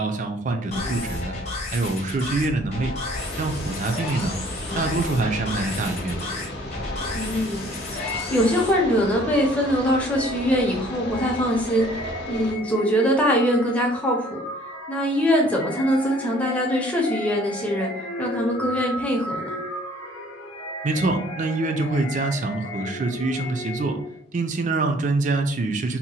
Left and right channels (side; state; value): both; normal; correlation 0.56